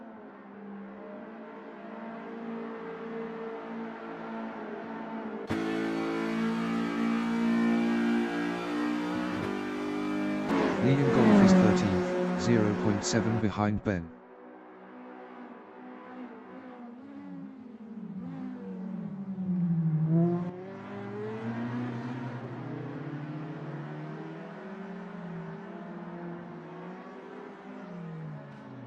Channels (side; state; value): both; identical; correlation 1.00